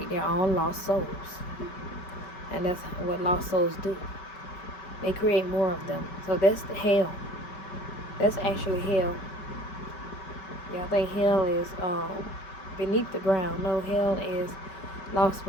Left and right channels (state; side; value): late; right; 5.2 ms